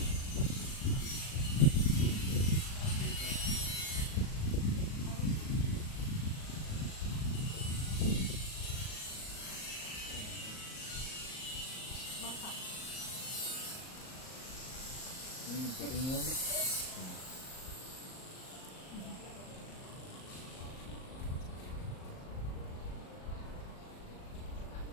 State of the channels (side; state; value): right; late; 38 ms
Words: Bangka. Yung puting yun. Yes,